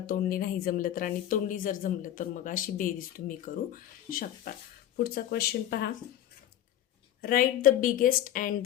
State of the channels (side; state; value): right; quieter; 11.6 dB